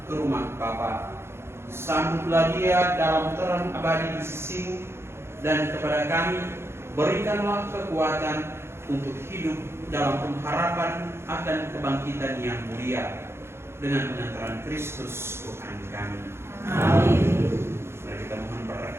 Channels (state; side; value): late; left; 0.12 ms